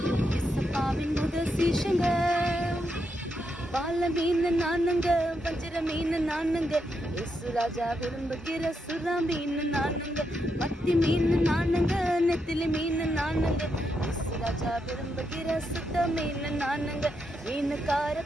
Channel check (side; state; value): both; normal; correlation 0.82